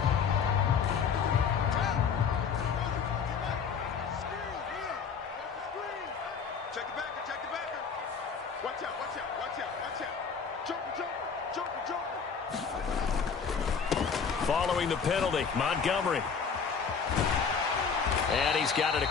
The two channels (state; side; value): quieter; right; 6.1 dB